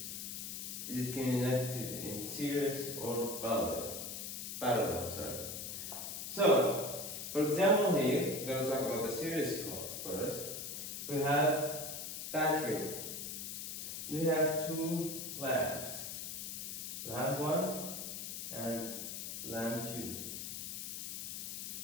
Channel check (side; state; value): left; noise; hiss, 6 dB below the sound